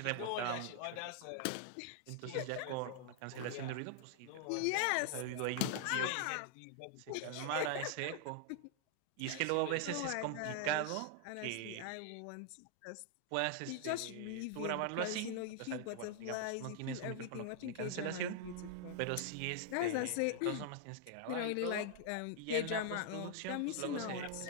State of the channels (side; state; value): both; different; correlation 0.00